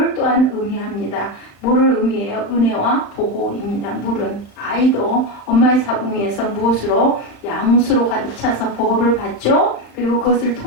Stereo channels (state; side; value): late; right; 36 ms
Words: 또한 의미합니다. 뭐를 의미해요? 은혜와 보호입니다. 물은 아이도 엄마의 자궁 위에서 무엇으로? 양수로 가득 차서 보호를 받죠. 그리고 그것을